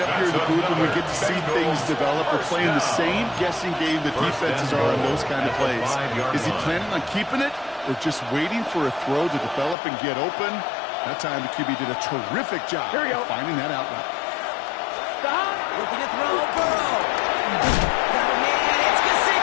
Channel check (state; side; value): drops out; right; at 9.8 s